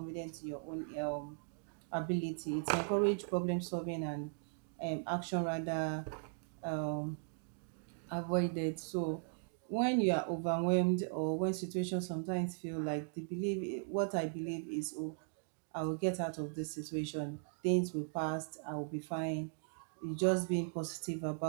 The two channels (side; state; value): left; silent; digital silence